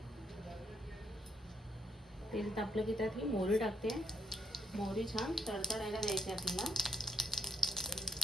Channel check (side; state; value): both; normal; correlation 0.74